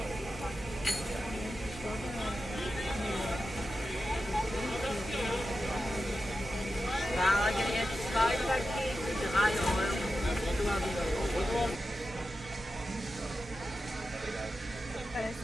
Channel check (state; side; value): normal; both; correlation 0.91